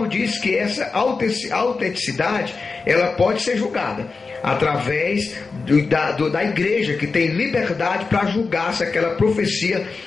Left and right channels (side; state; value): right; quieter; 4.4 dB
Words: diz que essa autenticidade, ela pode ser julgada através da igreja, que tem liberdade para julgar se aquela profecia